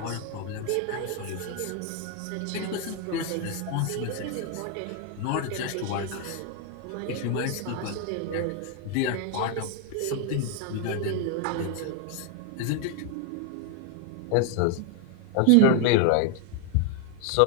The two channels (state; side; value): different; both; correlation 0.00